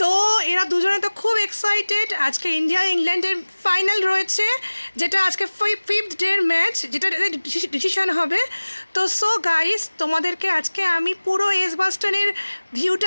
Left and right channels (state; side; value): inverted; both; correlation -1.00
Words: তো এরা দুজনে তো খুব এক্সাইটেড। আজকে ইন্ডিয়া ইংল্যান্ডের ফাইনাল রয়েছে, যেটা আজকে 5th ডের ম্যাচ, যেটা ডিসিশন হবে। তো সো গাইস, তোমাদেরকে আজকে আমি পুরো এজবাস্টনের